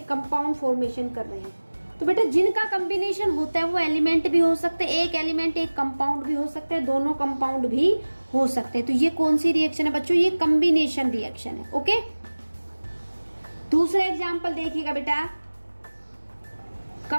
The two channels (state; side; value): inverted; both; correlation -1.00